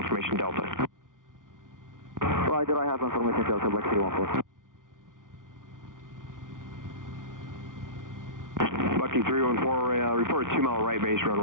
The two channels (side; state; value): left; late; 0.89 ms